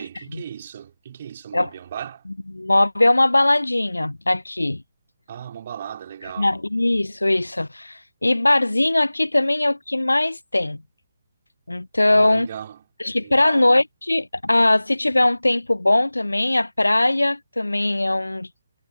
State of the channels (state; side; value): inverted; both; correlation -1.00